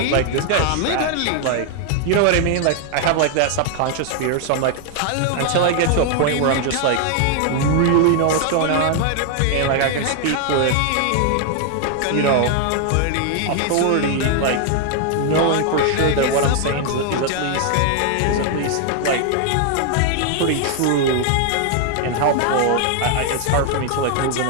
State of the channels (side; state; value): both; different; correlation 0.00